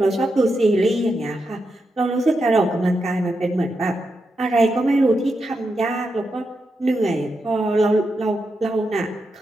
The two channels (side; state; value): both; normal; correlation 0.86